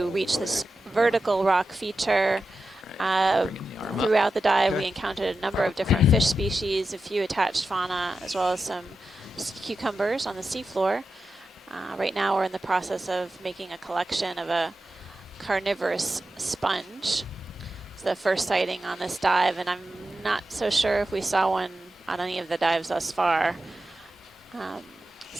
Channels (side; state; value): both; normal; correlation 0.91